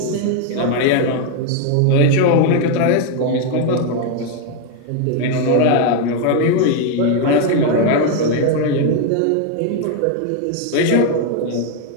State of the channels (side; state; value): both; different; correlation 0.01